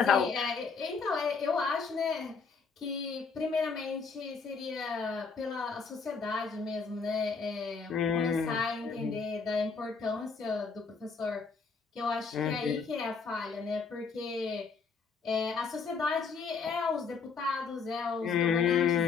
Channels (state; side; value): quieter; right; 5.2 dB